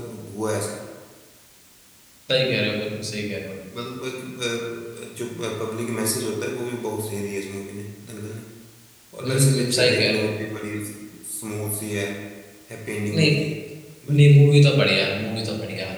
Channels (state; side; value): identical; both; correlation 1.00